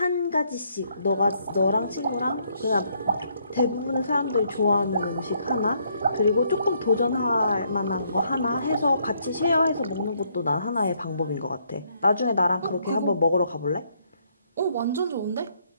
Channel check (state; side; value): inverted; both; correlation -0.71